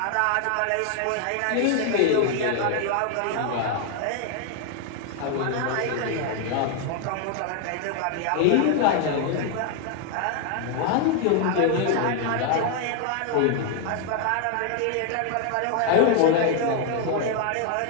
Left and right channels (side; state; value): both; different; correlation 0.00